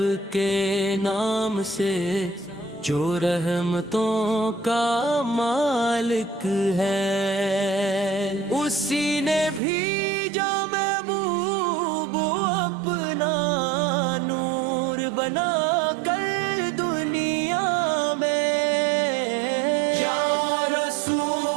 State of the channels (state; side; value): drops out; left; at 9.6 s